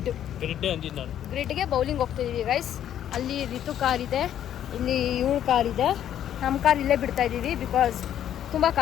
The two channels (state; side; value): quieter; right; 10.6 dB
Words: ಗ್ರಿಡ್ಗೆ ಬೌಲಿಂಗ್ ಹೋಗ್ತಾ ಇದೀವಿ ಗೈಸ್. ಅಲ್ಲಿ ರಿತು ಕಾರ್ ಇದೆ, ಇಲ್ಲಿ ಇವಳು ಕಾರ್ ಇದೆ. ನಮ್ಮ ಕಾರ್ ಇಲ್ಲೇ ಬಿಡ್ತಾ ಇದೀವಿ ಬಿಕಾಸ್ ತುಂಬ